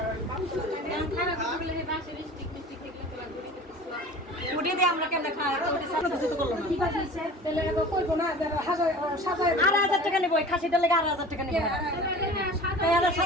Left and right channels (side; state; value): both; normal; correlation 0.40